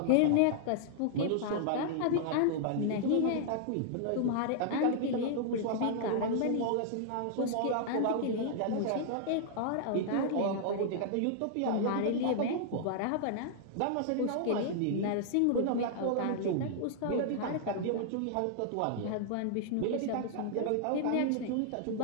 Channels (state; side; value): different; both; correlation -0.01